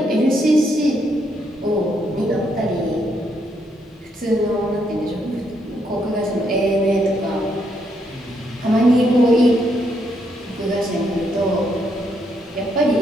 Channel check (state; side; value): normal; both; correlation 0.75